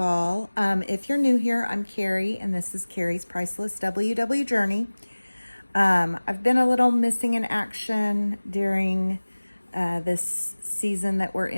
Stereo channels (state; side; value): inverted; both; correlation -1.00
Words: all. If you're new here, I'm Carrie, and this is Carrie's Priceless WW Journey. I've been a little missing in action during this season that we're